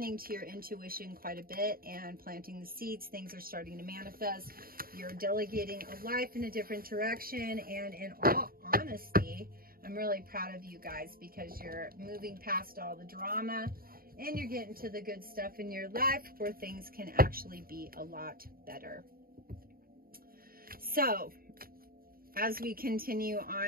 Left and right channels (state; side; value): late; left; 0.43 ms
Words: to your intuition quite a bit and planting the seeds. Things are starting to manifest. You're delegating a life in a different direction. And in all honesty, I'm really proud of you guys because you're moving past all the drama and you're getting to the good stuff in your life where things can actually be a lot better. So, as we continue